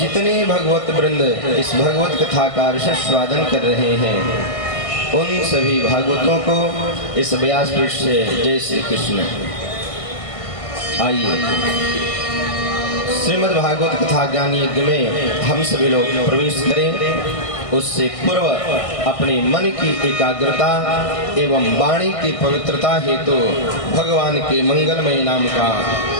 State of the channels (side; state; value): right; late; 1.6 ms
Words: भगवत वृंद इस भगवत कथा का रसस्वादन कर रहे हैं उन सभी भागवतों को इस व्यासपीठ से जय श्री कृष्ण। आइए श्रीमद् भागवत कथा ज्ञान यज्ञ में हम सभी लोग प्रवेश करें। उससे पूर्व अपने मन की एकाग्रता एवं वाणी की पवित्रता हेतु भगवान के मंगलमय नाम का